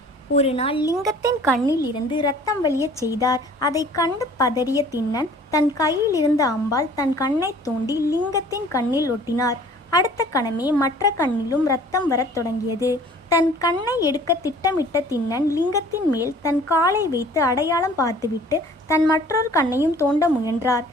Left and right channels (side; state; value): both; normal; correlation 0.51